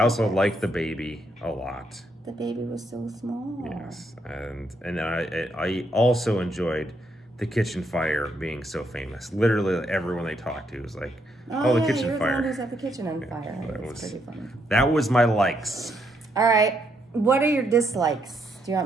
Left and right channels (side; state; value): both; normal; correlation 0.76